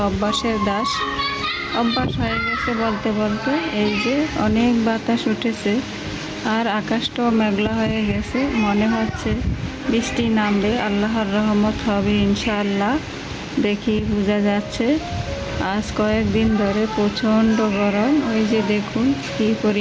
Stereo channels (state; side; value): identical; both; correlation 1.00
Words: অভ্যাসের দাস, অভ্যাস হয়ে গেছে বলতে বলতে। এই যে অনেক বাতাস উঠেছে আর আকাশটাও মেঘলা হয়ে গেছে। মনে হচ্ছে বৃষ্টি নামবে, আল্লাহর রহমত হবে ইনশাআল্লাহ। দেখি বোঝা যাচ্ছে। আজ কয়েকদিন ধরে প্রচণ্ড গরম। ওই যে দেখুন কী